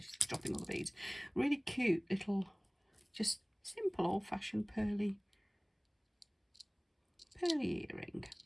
dropping all the beads. Really cute little, just simple old-fashioned pearly earring.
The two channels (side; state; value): both; identical; correlation 1.00